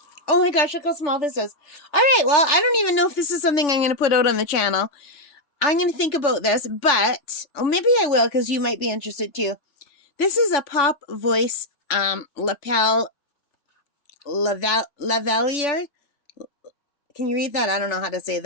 Oh my gosh, look how small this is. All right, well, I don't even know if this is something I'm going to put out on the channel. I'm going to think about this, but maybe I will because you might be interested too. This is a Pop Voice Lapel Lavalier. Can you read that? I don't know how to say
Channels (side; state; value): right; late; 3.4 ms